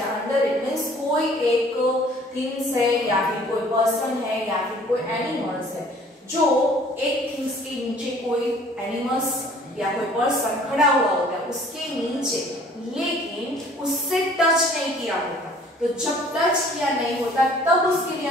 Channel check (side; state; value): both; normal; correlation 0.54